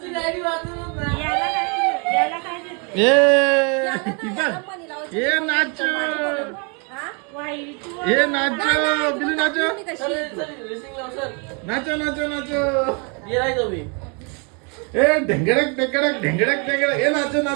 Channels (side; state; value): left; quieter; 35.4 dB